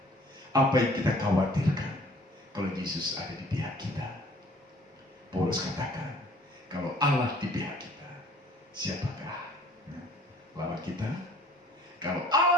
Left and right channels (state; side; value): normal; both; correlation 0.53